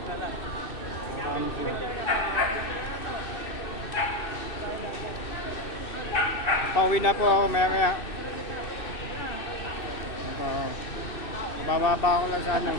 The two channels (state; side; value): late; right; 2.6 ms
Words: Marami siya. Papauwi na po ako maya. Bababa ako lang sa